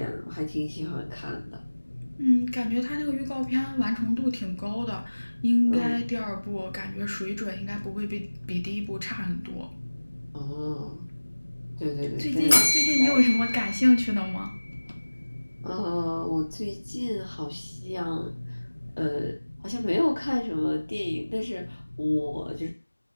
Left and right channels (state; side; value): inverted; both; correlation -1.00